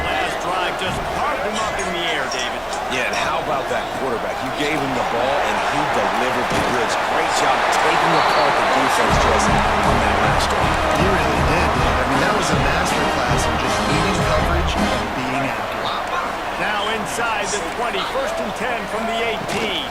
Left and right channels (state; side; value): identical; both; correlation 1.00